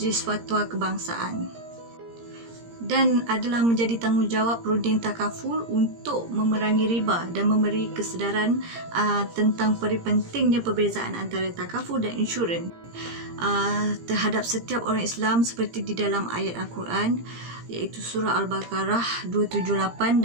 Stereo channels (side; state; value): left; late; 17 ms